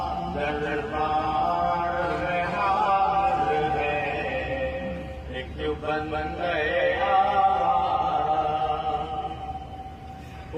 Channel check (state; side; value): identical; both; correlation 1.00